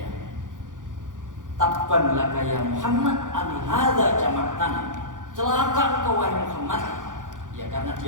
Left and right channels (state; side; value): late; left; 0.88 ms